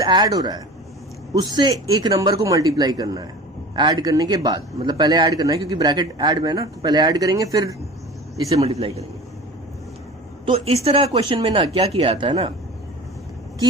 हो रहा है, उससे एक नंबर को मल्टीप्लाई करना है, ऐड करने के बाद, मतलब पहले ऐड करना है क्योंकि ब्रैकेट ऐड में है ना, तो पहले ऐड करेंगे फिर इसे मल्टीप्लाई करेंगे। तो इस तरह क्वेश्चन में ना क्या किया जाता है ना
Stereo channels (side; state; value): both; normal; correlation 0.37